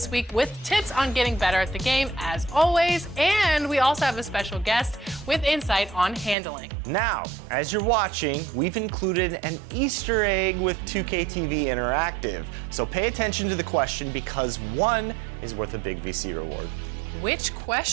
week with tips on getting better at the game, as always, and we also have a special guest with insight on handling. Now, as you're watching, we've included an Easter egg with 2K TV Interactive. So pay attention to the question because one is worth a big VC reward. Which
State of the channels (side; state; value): left; drops out; at 6.4 s